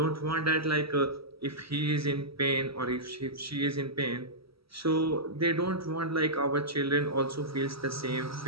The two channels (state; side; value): late; left; 0.76 ms